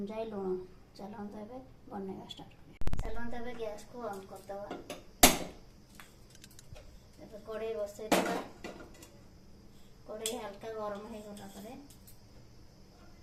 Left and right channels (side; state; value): both; identical; correlation 1.00